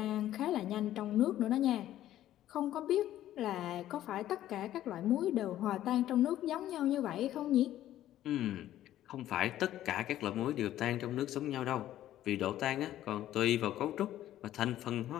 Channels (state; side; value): quieter; right; 13.0 dB